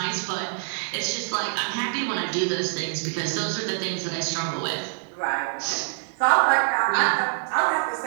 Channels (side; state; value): left; silent; 61 dB below the other